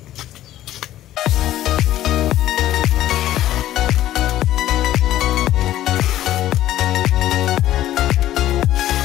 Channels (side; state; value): right; quieter; 13.5 dB